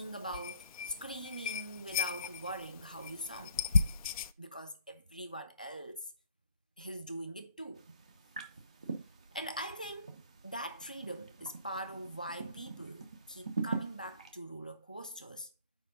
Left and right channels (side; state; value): both; inverted; correlation -0.61